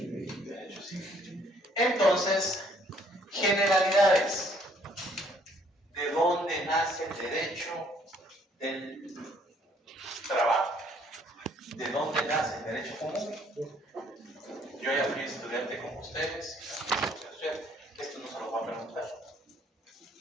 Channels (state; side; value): normal; both; correlation 0.63